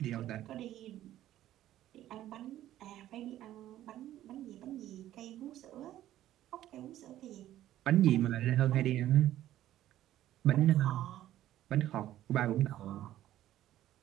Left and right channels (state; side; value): quieter; left; 13.3 dB